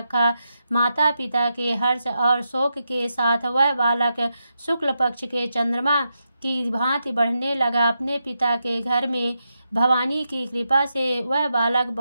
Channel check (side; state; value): both; inverted; correlation -0.85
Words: माता पिता के हर्ष और शोक के साथ वह बालक शुक्ल पक्ष के चंद्रमा की भांति बढ़ने लगा। अपने पिता के घर में भवानी की कृपा से वह बालक